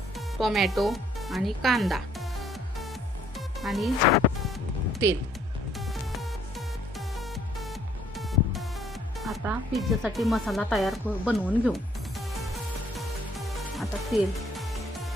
टोमॅटो आणि कांदा आणि तेल. आता पिझ्झासाठी मसाला तयार बनवून घेऊ. आता तेल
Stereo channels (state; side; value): normal; both; correlation 0.63